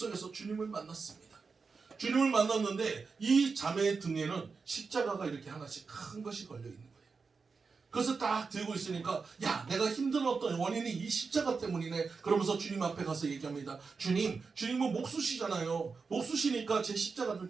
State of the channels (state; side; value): quieter; left; 4.9 dB